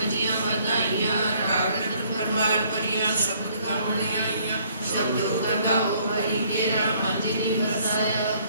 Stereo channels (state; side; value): inverted; both; correlation -0.63